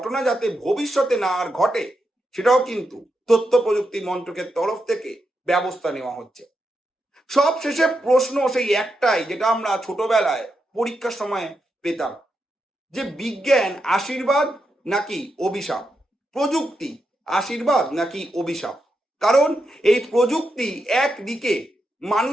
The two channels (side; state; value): both; normal; correlation 0.85